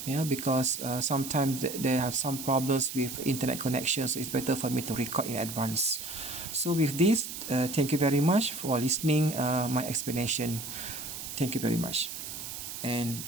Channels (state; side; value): noise; right; hiss, 8 dB below the sound